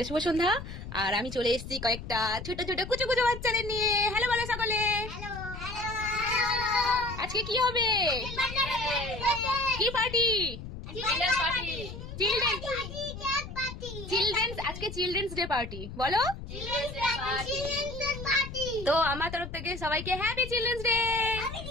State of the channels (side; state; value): left; noise; rumble, 10 dB below the sound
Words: শুভ সন্ধ্যা। আর আমি চলে এসেছি কয়েকটা ছোট ছোট কুচু কুচু বাচ্চাদের নিয়ে। হ্যালো বলো সকলে। আজকে কি হবে? কি পার্টি? চিলড্রেন্স, আজকে চিলড্রেন্স ডে পার্টি। বলো। তো আমার তরফ থেকে সবাইকে happy children's day.